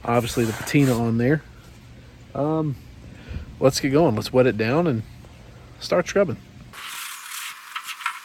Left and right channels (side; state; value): both; identical; correlation 1.00